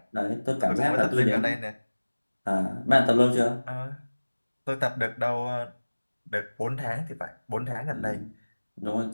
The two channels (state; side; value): inverted; both; correlation -1.00